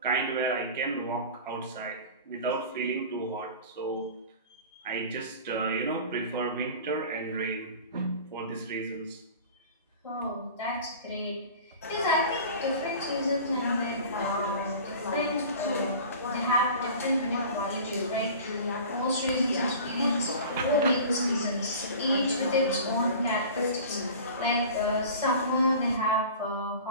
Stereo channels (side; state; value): both; inverted; correlation -0.39